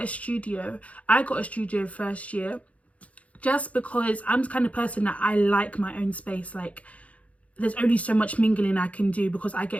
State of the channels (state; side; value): late; right; 0.066 ms